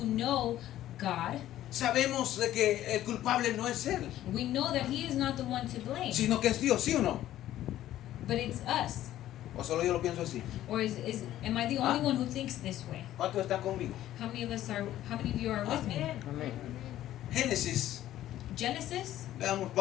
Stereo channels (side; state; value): right; quieter; 13.3 dB